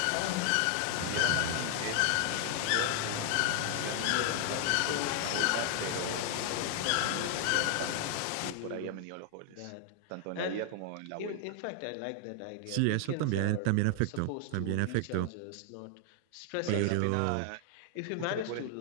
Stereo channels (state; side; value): different; both; correlation 0.00